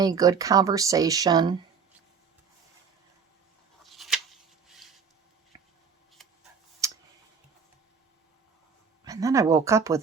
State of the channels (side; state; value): left; quieter; 6.0 dB